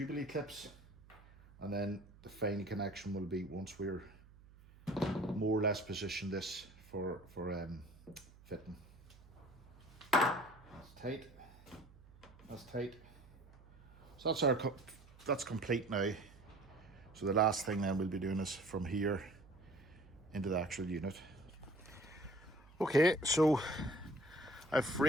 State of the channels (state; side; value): noise; right; hum, 23 dB below the sound